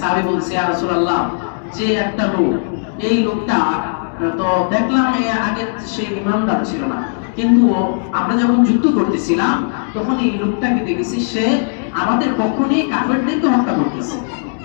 বলছে ইয়া রাসূলুল্লাহ যে একটা লোক, এই লোকটা তো দেখলাম আগে সে ঈমানদার ছিল না, কিন্তু আমরা যখন যুদ্ধ করতেছিলাম তখন এই লোকটাকে দেখেছি সে আমাদের পক্ষ নিয়ে কাফেরদেরকে হত্যা করতেছে।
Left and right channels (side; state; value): right; silent; 68 dB below the other